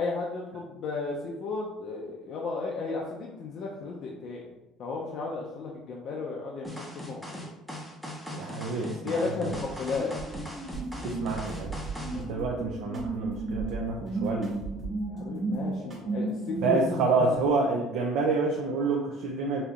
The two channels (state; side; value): normal; both; correlation 0.48